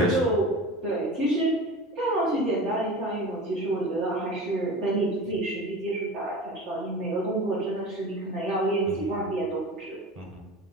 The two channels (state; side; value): normal; both; correlation 0.34